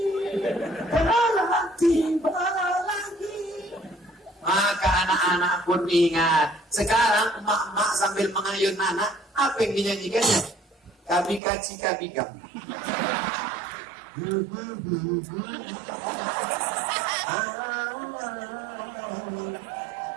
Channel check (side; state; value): left; drops out; at 11.4 s